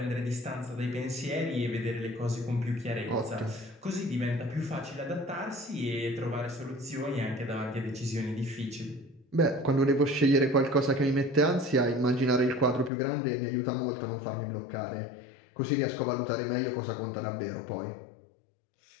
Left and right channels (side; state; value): right; drops out; at 12.9 s